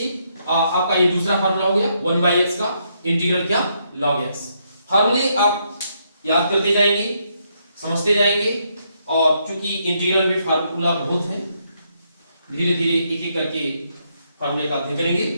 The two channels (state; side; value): inverted; both; correlation -0.76